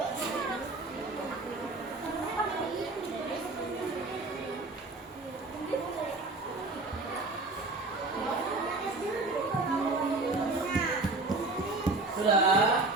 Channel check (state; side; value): quieter; left; 3.3 dB